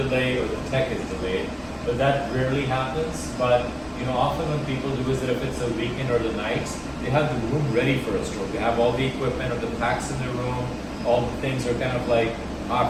or the tech is delayed, but that rarely happens. But often what people do is that if it's a weekend or the nights, they have the room ready for a stroke. They have all the equipment or the packs in the room, all the things are kind of like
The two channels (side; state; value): both; identical; correlation 1.00